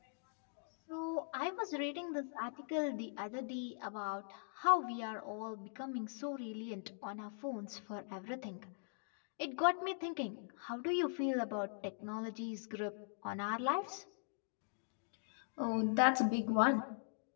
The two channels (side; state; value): right; silent; digital silence